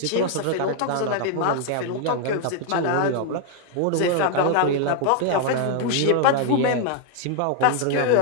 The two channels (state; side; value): different; both; correlation 0.00